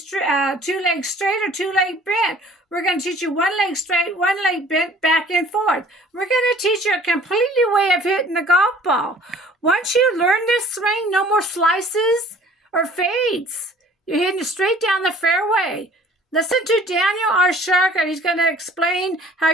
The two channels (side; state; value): both; normal; correlation 0.52